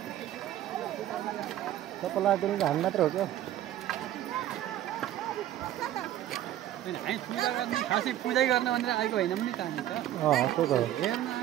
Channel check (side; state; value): left; quieter; 12.6 dB